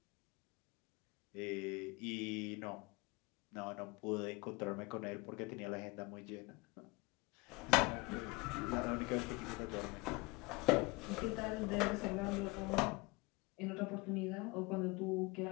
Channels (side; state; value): right; quieter; 24.8 dB